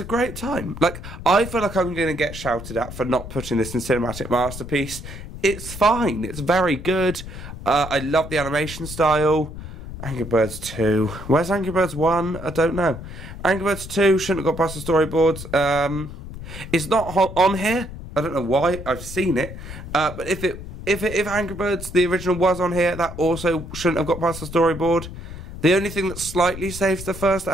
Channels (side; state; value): left; noise; rumble, 11 dB below the sound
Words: great time. Like, I feel like I'm going to get shouted at for not putting this in Cinematic Masterpiece. It's fine. It's very good. I love the animation style. Angry Birds 2. Where's Angry Birds 1? I don't know. Angry Birds 2 shouldn't have got past the storyboards. It's not on here. I don't know why. I've seen it. But if Angry Birds, the original, was on here, that also shouldn't have got past the storyboard. The only thing that slightly saves the first